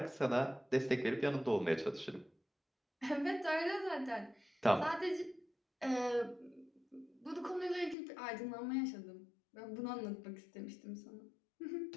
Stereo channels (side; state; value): right; drops out; at 8.0 s